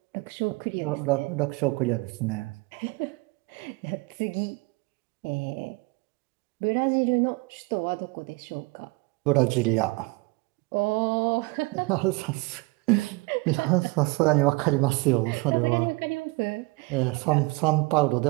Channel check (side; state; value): left; quieter; 25.6 dB